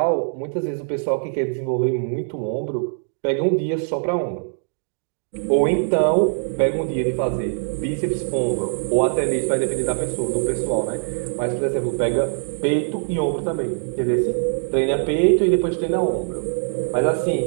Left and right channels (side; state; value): left; silent; digital silence